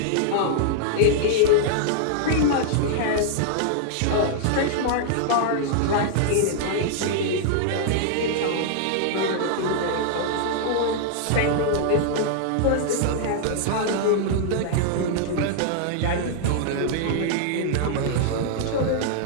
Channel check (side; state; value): both; different; correlation -0.01